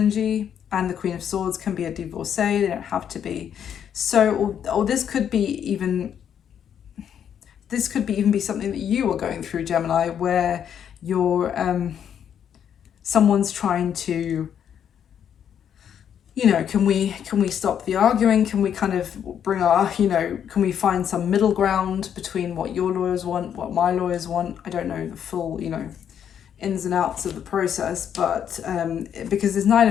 and the Queen of Swords can be a divorcee, they don't have to be. So, or this could be even be something that you are going through, Gemini, where you're, someone's trying to, can we stop the arguing? Can we kind of bring our, can we find some middle ground between what your lawyers want, what my lawyers want? I don't know the full, ins and outs of the process, but because this Nine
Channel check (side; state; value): right; quieter; 8.8 dB